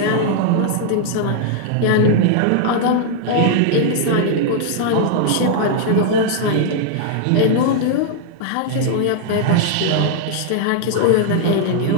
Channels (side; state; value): both; different; correlation 0.00